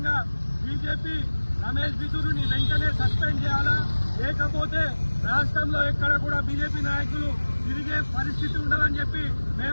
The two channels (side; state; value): both; inverted; correlation -1.00